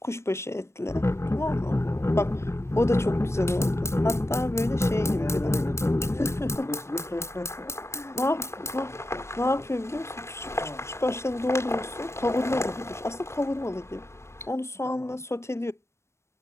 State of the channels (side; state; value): right; late; 0.13 ms